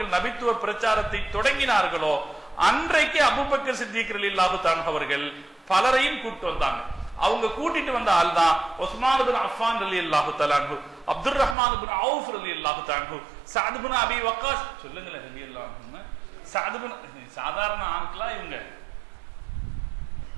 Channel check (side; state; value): left; drops out; at 11.6 s